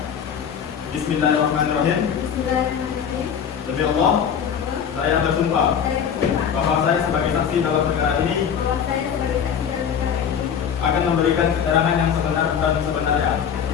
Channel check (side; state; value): right; quieter; 7.8 dB